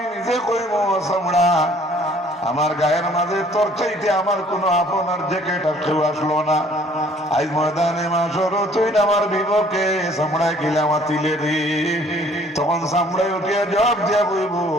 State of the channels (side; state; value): both; normal; correlation 0.57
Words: নিজে কইব চামড়া আমার গায়ের মাঝে তোর চাইতে আমার কোনো আপনার জ্যাকেট আর কেউ আসলো না। আজ ময়দানে মাশর তুই আমার বিপক্ষে চামড়ায় গিলা মাতিলে রে, তখন চামড়ায় উঠিয়া জবাব দিয়া কইব